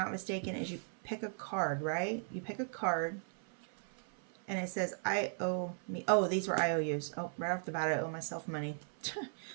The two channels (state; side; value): silent; left; 53 dB below the other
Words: mistaken, is you pick a card, right? You pick a card, and it says, I owe me. Oh, these were IOUs. Oh, right off the bat, I owe myself money.